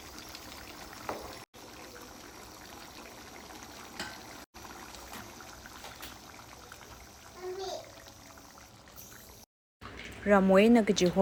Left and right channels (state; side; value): identical; both; correlation 1.00